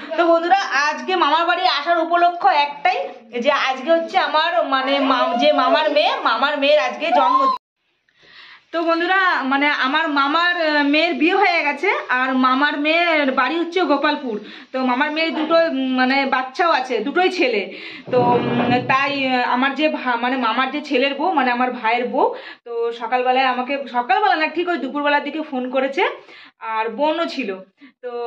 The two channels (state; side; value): identical; both; correlation 1.00